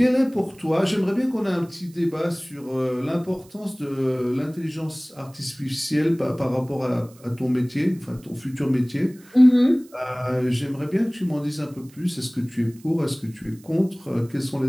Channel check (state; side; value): noise; right; hiss, 26 dB below the sound